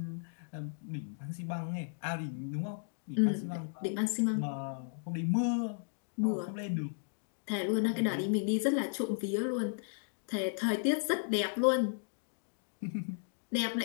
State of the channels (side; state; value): right; silent; digital silence